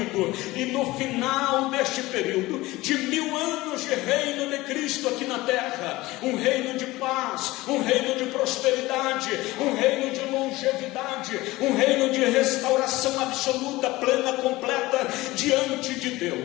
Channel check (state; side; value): quieter; right; 19.3 dB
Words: E no final deste período de 1000 anos de reino de Cristo aqui na terra, um reino de paz, um reino de prosperidade, um reino de longevidade, um reino de restauração absoluta, plena, completa diante de